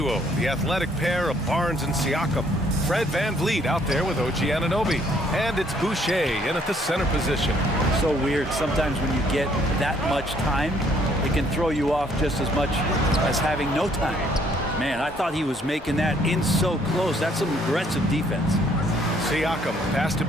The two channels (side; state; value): both; normal; correlation 0.64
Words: the athletic pair of Barnes and Siakam. Fred VanVleet out there with OG Anunoby. And it's Boucher in at the center position. So weird. Sometimes when you get that much time, it can throw you off just as much as having no time. Man, I thought he was making that in so close. That's some aggressive defense. Siakam pass to